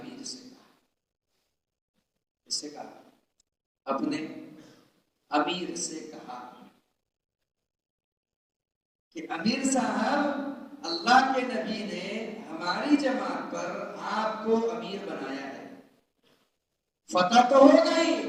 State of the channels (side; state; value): both; identical; correlation 1.00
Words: سے کہا، اس سے کہا، اپنے امیر سے کہا کہ امیر صاحب، اللہ کے نبی نے ہماری جماعت پر آپ کو امیر بنایا ہے، فتح تو ہو گئی،